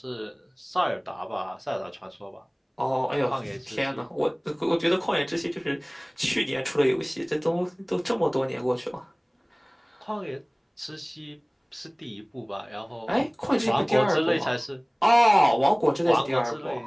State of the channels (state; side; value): identical; both; correlation 1.00